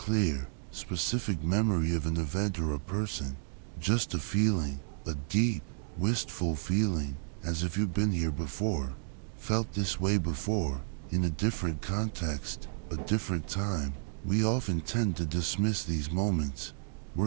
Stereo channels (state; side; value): silent; left; digital silence